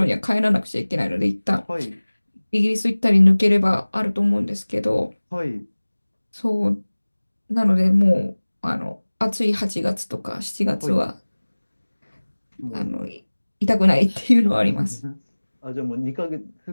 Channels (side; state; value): both; inverted; correlation -1.00